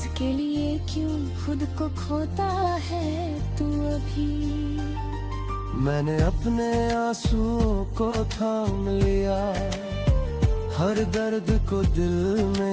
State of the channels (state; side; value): identical; both; correlation 1.00